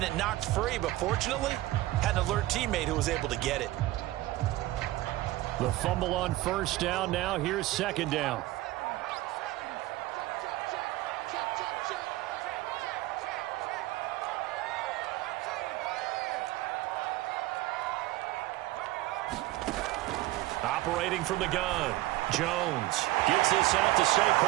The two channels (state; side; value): quieter; left; 17.5 dB